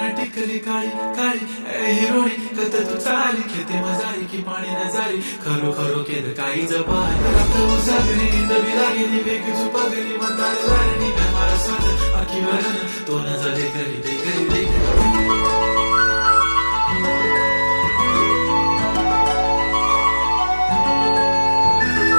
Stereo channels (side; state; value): both; inverted; correlation -1.00